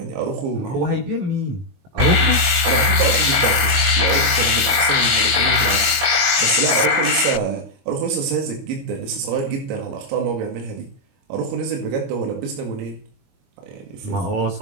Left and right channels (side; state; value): left; late; 22 ms